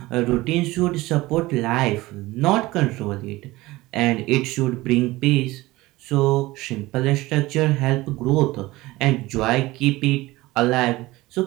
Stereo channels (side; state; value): left; quieter; 19.4 dB